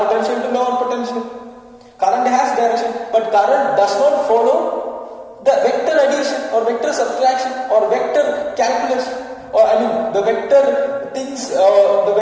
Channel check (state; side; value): identical; both; correlation 1.00